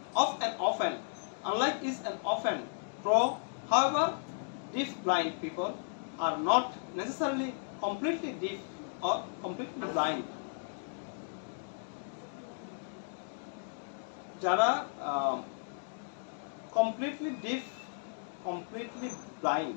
Unlike is an often true, however, deaf blind people are not necessarily completely deaf or completely blind. যারা completely deaf, completely blind,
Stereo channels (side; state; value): right; silent; digital silence